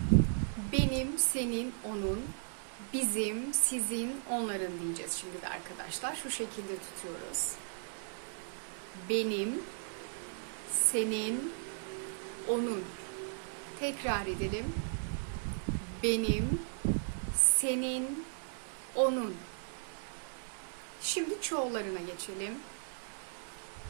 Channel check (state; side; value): silent; left; digital silence